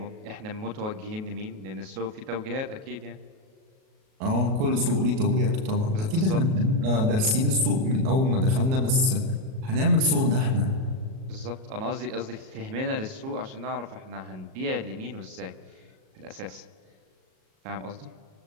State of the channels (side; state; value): left; late; 37 ms